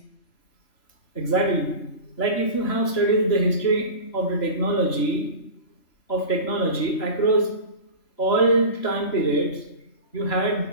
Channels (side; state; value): right; late; 3.0 ms